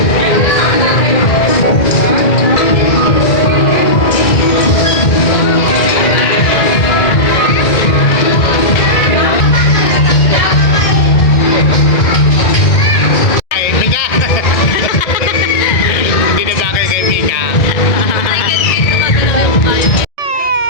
Ay, Mika. Hindi na bagay kay Mika.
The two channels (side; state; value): right; late; 2.0 ms